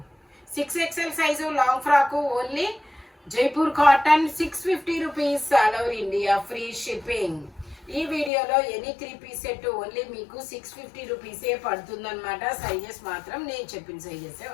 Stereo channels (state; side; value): drops out; right; at 8.3 s